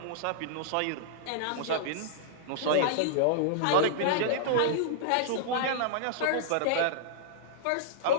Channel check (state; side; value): different; both; correlation -0.02